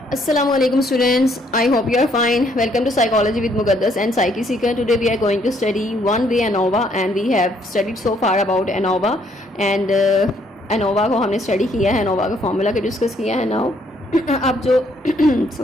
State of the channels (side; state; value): both; normal; correlation 0.68